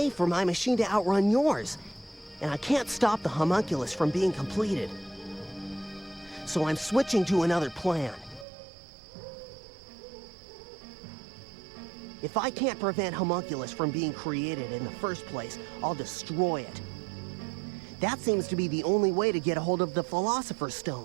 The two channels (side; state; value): left; drops out; at 8.5 s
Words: for my machine to outrun yours. And I can't stop the homunculus from being completed. So I'm switching to another plan. If I can't prevent homunculus from being created in the first place, I'll destroy it. That seems to be the only way to get a hold of the Philosopher's